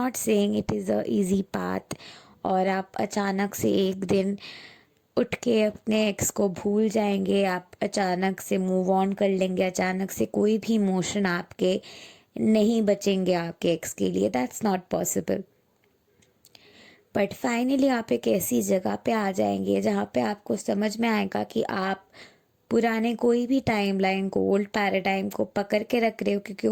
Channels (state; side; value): identical; both; correlation 1.00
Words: saying it is a easy path और आप अचानक से एक दिन उठ के अपने एक्स को भूल जाएंगे, आप अचानक से मूव ऑन कर लेंगे, अचानक से कोई भी इमोशन आपके नहीं बचेंगे आपके एक्स के लिए। That's not possible. But finally आप एक ऐसी जगह पे आ जाएंगे जहाँ पे आपको समझ में आएगा कि आप पुराने कोई भी टाइमलाइन को, ओल्ड पैराडाइम को पकड़ के रख रहे हो, क्योंकि